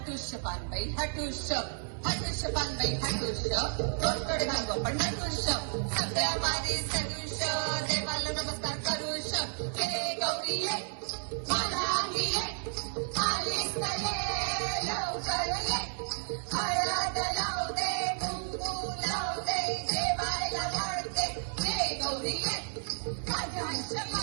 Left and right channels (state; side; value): silent; left; 56 dB below the other